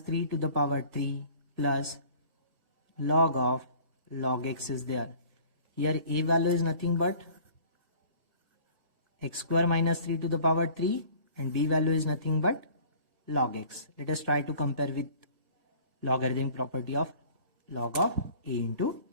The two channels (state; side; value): late; left; 1.6 ms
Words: to the power 3 plus log of log x is there. Here a value is nothing but x square minus 3 to the power 3 and b value is nothing but log x. Let us try to compare with logarithmic property of log of a into